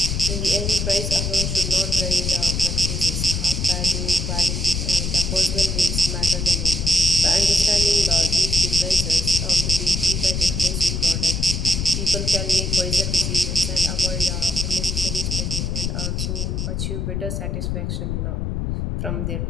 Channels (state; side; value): noise; left; rumble, 1 dB below the sound